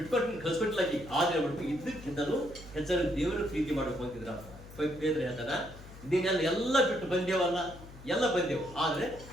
ಕಳ್ಸ್ಕೊಟ್ಟಿಲ್ಲ. ಆದರೆ ಬಿಟ್ಟು ಇದ್ದಕ್ಕಿಂತಲೂ ಹೆಚ್ಚಾಗಿ ದೇವರ ಪ್ರೀತಿ ಮಾಡಬೇಕು ಅಂತಿದ್ರ ಬೇದ್ರೆ ಹೇಳ್ತಾನ. ಇದನ್ನೆಲ್ಲ ಎಲ್ಲ ಬಿಟ್ಟು ಬಂದೇವಲ್ಲ, ಎಲ್ಲ ಬಂದೆವು. ಆದರೆ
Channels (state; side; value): noise; left; hum, 17 dB below the sound